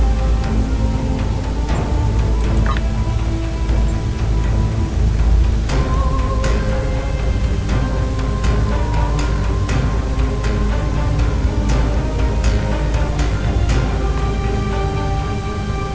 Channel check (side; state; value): both; identical; correlation 1.00